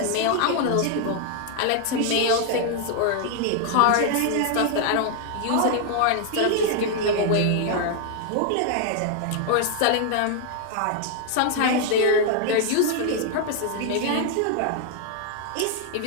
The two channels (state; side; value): different; both; correlation 0.00